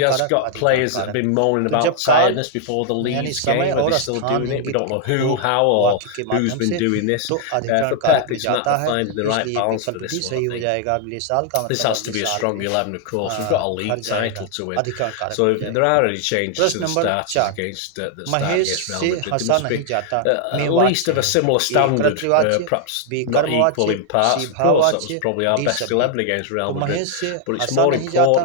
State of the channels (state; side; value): different; both; correlation 0.00